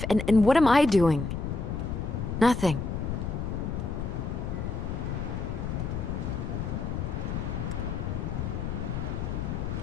and what am I doing? Nothing.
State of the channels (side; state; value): left; noise; rumble, 3 dB below the sound